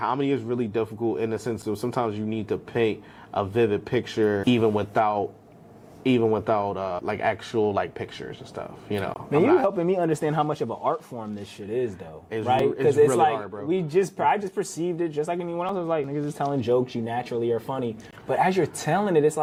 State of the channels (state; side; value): identical; both; correlation 1.00